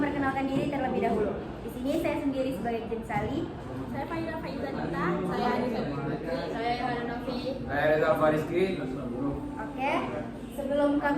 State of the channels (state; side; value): identical; both; correlation 1.00